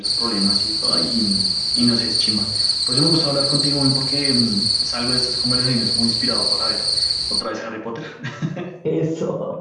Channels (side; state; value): both; identical; correlation 1.00